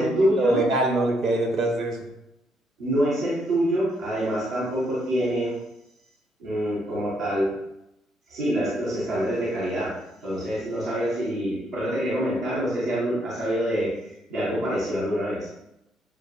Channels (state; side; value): normal; both; correlation 0.74